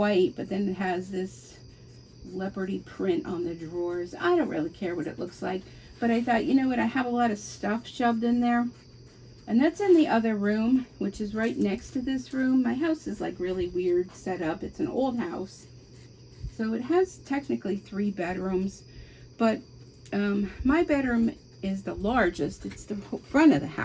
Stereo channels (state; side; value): identical; both; correlation 1.00